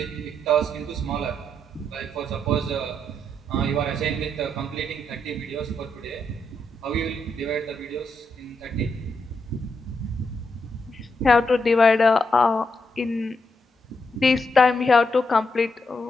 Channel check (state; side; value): normal; both; correlation 0.81